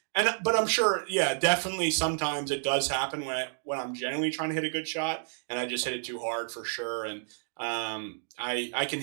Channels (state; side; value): silent; left; digital silence